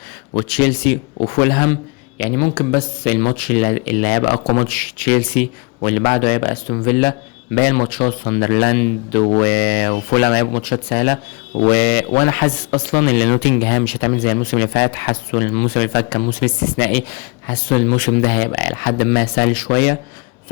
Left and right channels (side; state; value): right; quieter; 30.0 dB